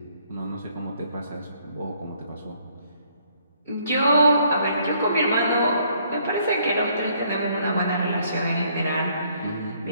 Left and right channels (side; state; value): both; inverted; correlation -0.66